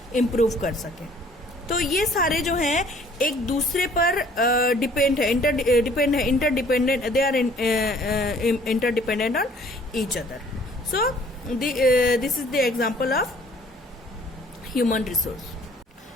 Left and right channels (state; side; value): normal; both; correlation 0.57